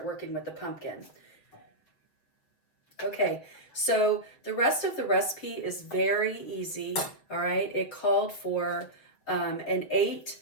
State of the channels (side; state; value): right; late; 7.0 ms